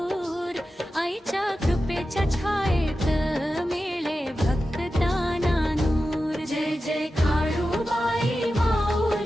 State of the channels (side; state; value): both; normal; correlation 0.93